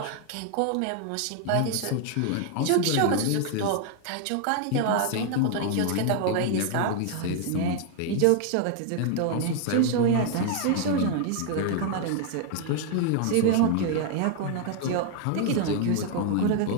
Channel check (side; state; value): both; different; correlation 0.00